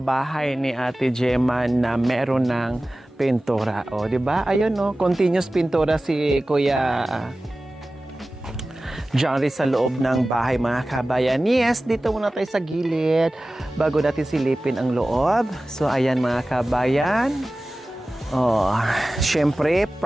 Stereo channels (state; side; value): normal; both; correlation 0.96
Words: ni Ate Gemma na meron ng pintura. O, di ba? Ayun, no? Continuous pintura si Kuya Johnny sa loob ng bahay, mga kabayan. Yes, dito muna tayo sa gilid bago natin silipin ang loob. So, ayan mga kabayan. Oh, syempre,